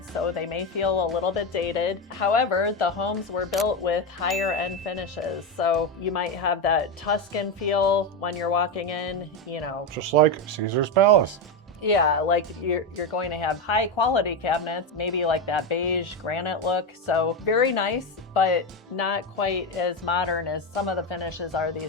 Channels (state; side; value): normal; both; correlation 0.12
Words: so they may feel a little bit dated. However, the homes were built with higher end finishes. So you might have that Tuscan feel when you're walking in, you know. Just like Caesar's Palace. Yeah, like you're going to have high quality cabinets, maybe like that beige granite look. So very nice, but not quite as modern as some of the finishes are